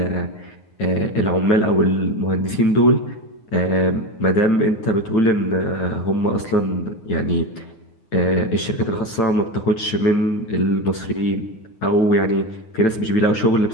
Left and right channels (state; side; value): late; right; 9.0 ms